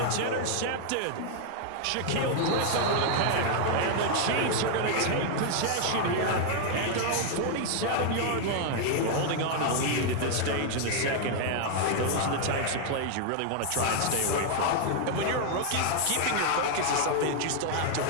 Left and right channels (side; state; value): both; different; correlation 0.00